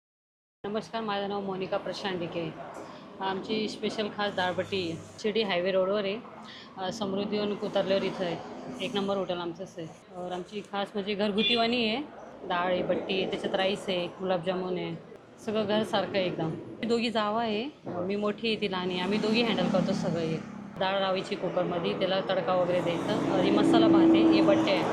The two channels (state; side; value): identical; both; correlation 1.00